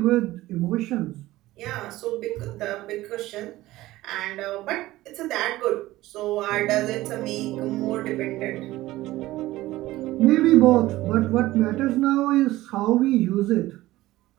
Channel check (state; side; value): quieter; left; 17.0 dB